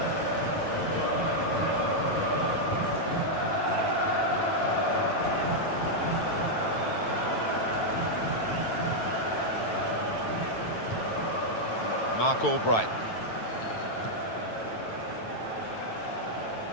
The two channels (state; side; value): late; right; 9.1 ms